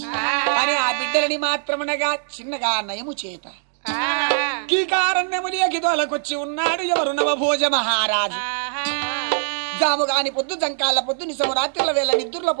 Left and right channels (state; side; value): silent; left; digital silence